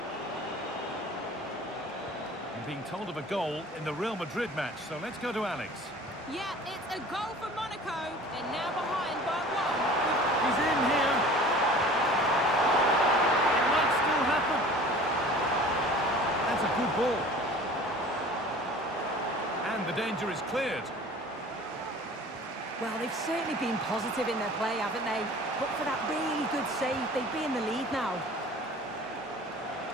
I'm being told of a goal in the Real Madrid match, so let's go to Alex. Yeah, it's a goal for Monaco. They're now behind by 1. He's in here. It might still happen. That's a good ball. And the danger is cleared. Well, they've certainly been positive in their play, haven't they? But for that really good save, they'd be in the lead now.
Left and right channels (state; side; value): normal; both; correlation 0.44